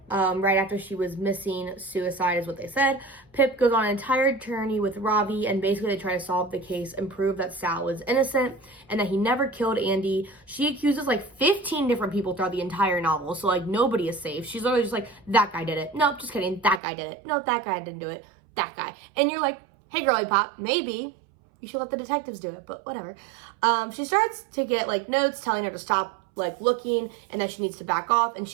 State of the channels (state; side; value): drops out; left; at 16.8 s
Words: right after she was missing. Suicide is what they said. Pip goes on an entire journey with Ravi, and basically they try to solve the case and prove that Sal was innocent and that he never killed Andy. She accuses like 15 different people throughout the entire novel, so like nobody is safe. She's literally just like, that guy did it. Nope, just kidding. That guy did it. No, that guy didn't do it. That guy. And you're like, hey, girly pop, maybe you should let the detectives do it, but whatever. She starts to get like notes telling her to stop like looking and that she needs to back off, and